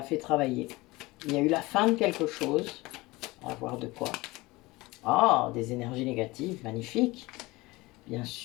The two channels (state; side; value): quieter; right; 21.5 dB